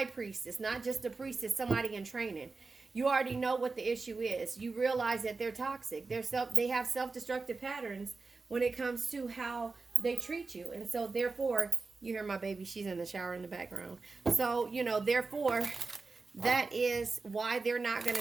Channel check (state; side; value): quieter; left; 4.1 dB